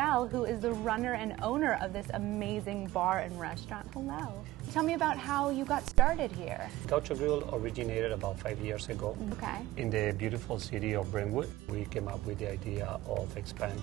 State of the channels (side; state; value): left; quieter; 16.8 dB